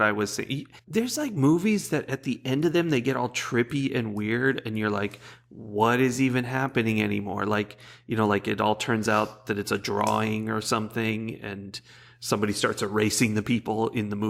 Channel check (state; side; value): identical; both; correlation 1.00